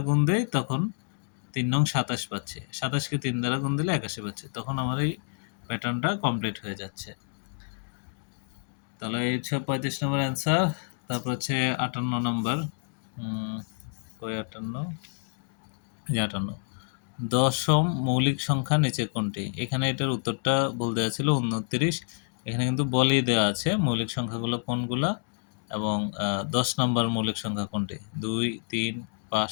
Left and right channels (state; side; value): silent; right; digital silence